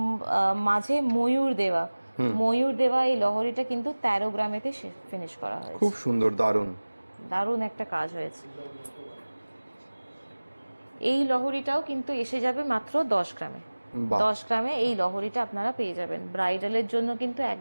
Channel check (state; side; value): inverted; both; correlation -1.00